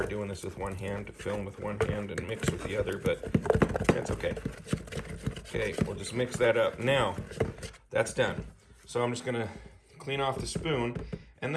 doing this with one hand, to film with one hand and mix with the other, but that's okay. Okay, we'll just mix that up. Now, that's done. So I'm just gonna clean off the spoon, and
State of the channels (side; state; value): both; identical; correlation 1.00